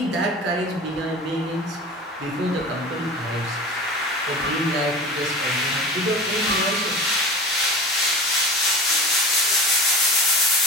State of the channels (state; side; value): normal; both; correlation 0.34